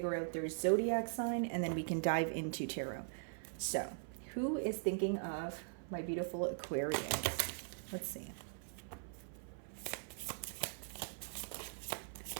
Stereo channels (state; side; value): silent; left; 50 dB below the other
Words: out their zodiac sign, and then we can dive into tarot. So, who is thinking of my beautiful Aquarius? Let's see.